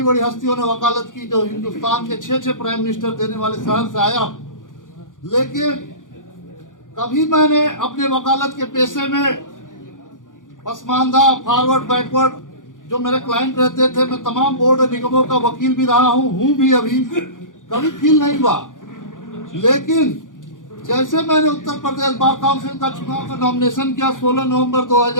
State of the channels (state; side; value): late; right; 0.88 ms